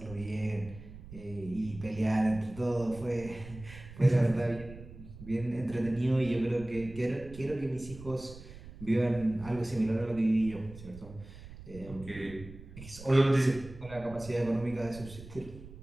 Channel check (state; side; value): noise; right; rumble, 15 dB below the sound